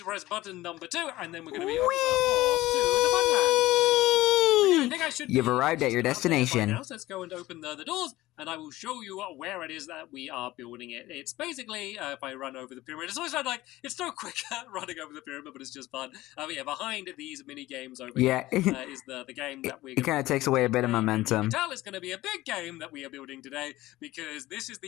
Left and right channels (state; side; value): quieter; right; 17.3 dB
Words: press button number 2, and then we're going to be off to the Funland. I think I should You've be arrived at your down there by destination. now, so let's go and open the doors, and I will show you where it is that we are building it. It's basically, if I run over the pyramid, it's always like, it's so quick running over the pyramid, but it's just fun. But yeah, behind these mini games over here is the game that we're It kind of takes away a bit of momentum. You can tell it's going to be a big game that we are building today, because this is